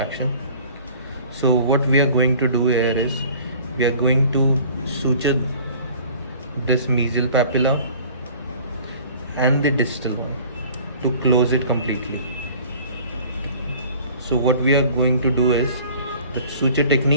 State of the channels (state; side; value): inverted; both; correlation -0.49